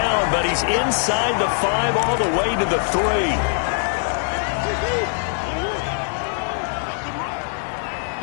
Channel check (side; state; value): right; silent; 56 dB below the other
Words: but he's inside the 5 all the way to the 3.